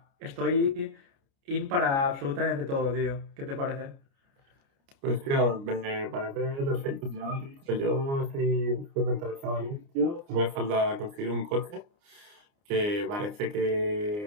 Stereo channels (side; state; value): left; late; 29 ms